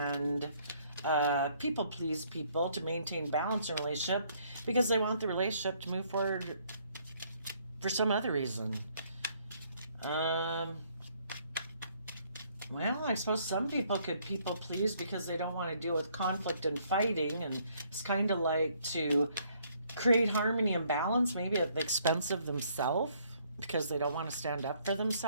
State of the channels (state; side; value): inverted; both; correlation -0.66